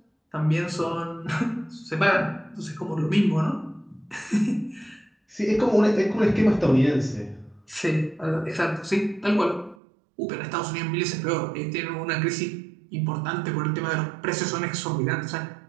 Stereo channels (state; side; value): drops out; left; at 9.8 s